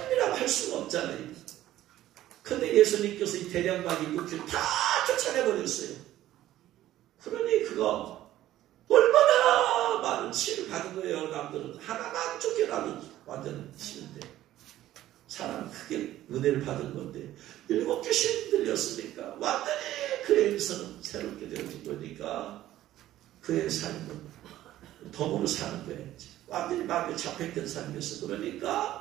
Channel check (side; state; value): left; quieter; 13.9 dB